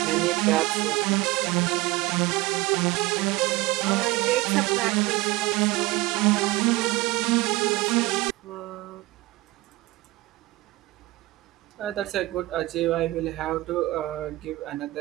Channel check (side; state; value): left; quieter; 19.9 dB